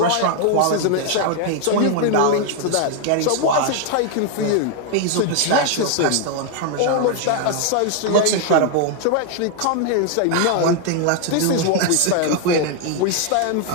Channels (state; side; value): different; both; correlation 0.00